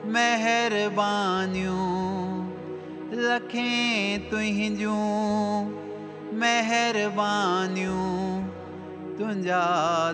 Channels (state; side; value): identical; both; correlation 1.00